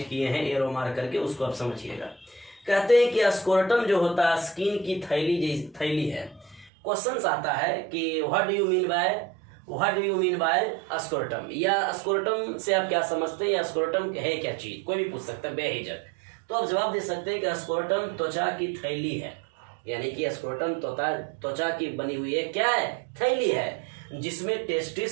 किए हैं एरो मार करके, उसको आप समझिएगा। कहते हैं कि स्क्रोटम जो होता है स्किन की थैली है। क्वेश्चंस आता है कि what do you mean by scrotum, या स्क्रोटम से आप क्या समझते हैं, या स्क्रोटम है क्या चीज, कोई भी पूछ सकता है बेहिचक। तो आप जवाब दे सकते हैं कि स्क्रोटम त्वचा की थैली है, यानी कि स्क्रोटम त्वचा की बनी हुई है, क्या है? थैली है, जिसमें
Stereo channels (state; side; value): drops out; left; at 6.7 s